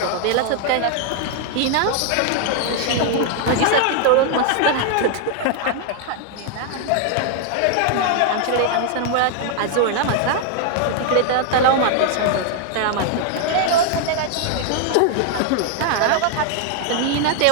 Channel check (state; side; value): different; both; correlation 0.00